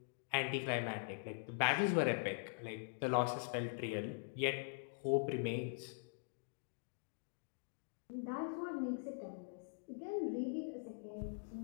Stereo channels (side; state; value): right; silent; digital silence